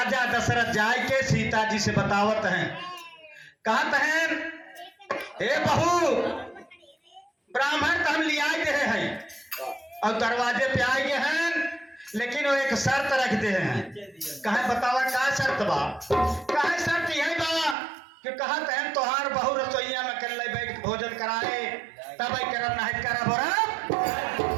दशरथ जाए के सीता जी से बतावत हैं, कहत हैं हे बहू ब्राह्मण तो हम लिया गए हैं और दरवाजे पे आए गए हैं लेकिन वो एक शर्त रखते हैं। कहे बतावा का शर्त बा? कहे शर्त यही बा कि कहत है तोहार बहु रसोईया में कर ले बैठ भोजन कराए तब करब नहीं करब और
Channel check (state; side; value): drops out; left; at 17.8 s